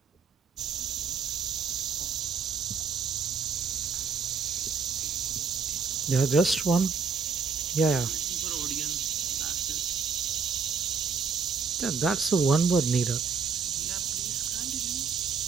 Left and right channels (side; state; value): left; quieter; 5.7 dB